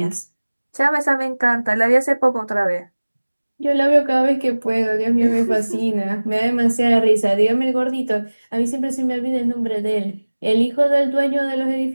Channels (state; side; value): inverted; both; correlation -1.00